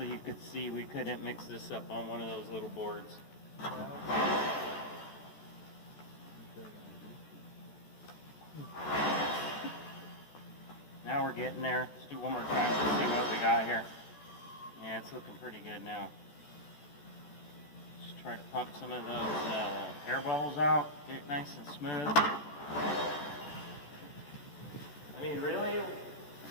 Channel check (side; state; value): right; late; 14 ms